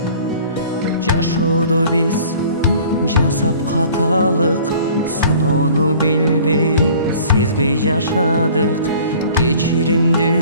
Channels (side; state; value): both; inverted; correlation -0.49